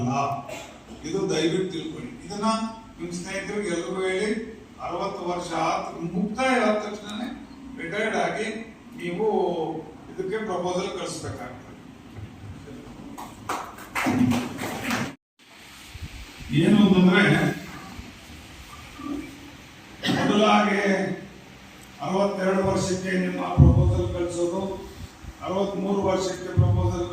ಇದು ದಯವಿಟ್ಟು ತಿಳ್ಕೊಳ್ಳಿ. ಇದನ್ನ ನಿಮ್ಮ ಸ್ನೇಹಿತರಿಗೆ ಎಲ್ಲರಿಗೂ ಹೇಳಿ. 60 ವರ್ಷ ಮುಕ್ತಾಯ ಆದ ತಕ್ಷಣ ರಿಟೈರ್ಡ್ ಆಗಿ ನೀವು ಇದಕ್ಕೆ ಪ್ರಪೋಸಲ್ ಕಳಿಸ್ಬೇಕಾಗ್ತದೆ. ಏನು ಅಂತಂದ್ರೆ ಮೊದಲಾಗಿ 62 ವರ್ಷಕ್ಕೆ ನಿಮ್ಮ ಪ್ರಪೋಸಲ್ ಕಳಿಸೋದು, 63 ವರ್ಷಕ್ಕೆ ಪ್ರಪೋಸಲ್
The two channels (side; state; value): both; identical; correlation 1.00